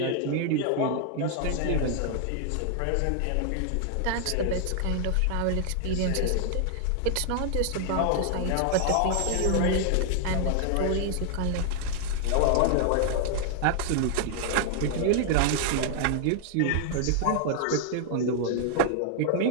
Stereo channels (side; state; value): both; different; correlation 0.00